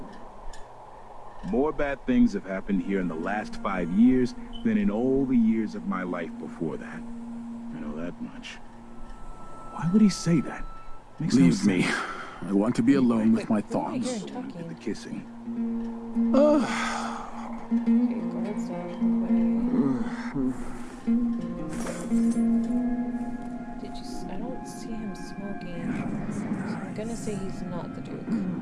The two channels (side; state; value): both; identical; correlation 1.00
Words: More bad things have happened here in the last 5 years than in all the years of my life before that. I know that much. Why would he say that? Makes no sense. Leave me. I want to be alone with my thoughts. Talking. The kissing. Okay, go ahead, stay I don't see him smoking. So I'm gonna say he's not the Duke.